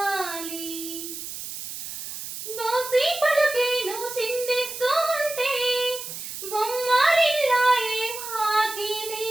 బోసి పలుకేను చిందిస్తూ ఉంటే బొమ్మరిల్లాయే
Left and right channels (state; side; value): noise; right; hiss, 9 dB below the sound